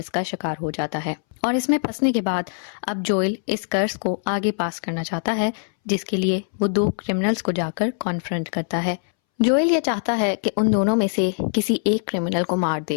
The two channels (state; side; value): silent; right; 63 dB below the other